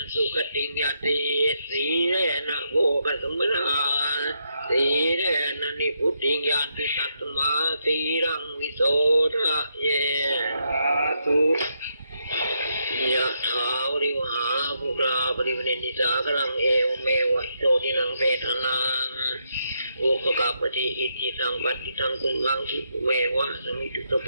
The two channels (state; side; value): inverted; both; correlation -0.79